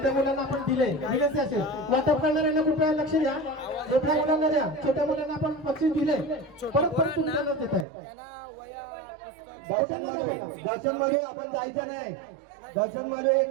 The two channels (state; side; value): drops out; left; at 7.9 s